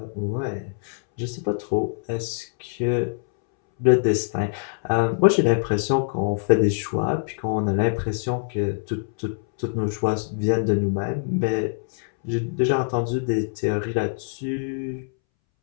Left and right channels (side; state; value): right; silent; 62 dB below the other